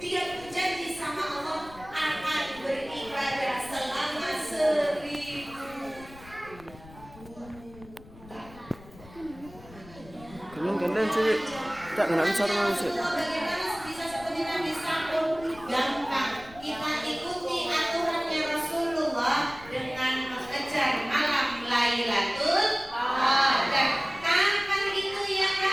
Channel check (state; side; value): noise; left; rumble, 20 dB below the sound